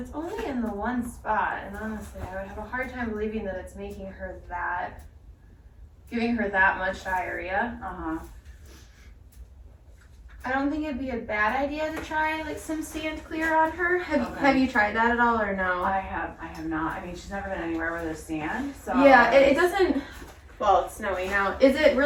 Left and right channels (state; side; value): identical; both; correlation 1.00